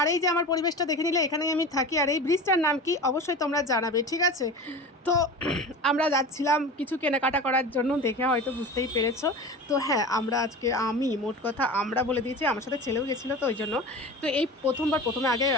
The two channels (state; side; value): normal; both; correlation 0.32